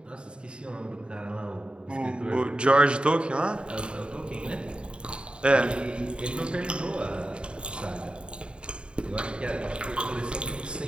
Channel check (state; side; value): late; left; 0.053 ms